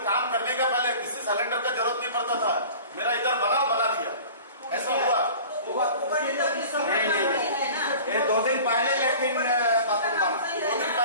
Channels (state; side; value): inverted; both; correlation -0.42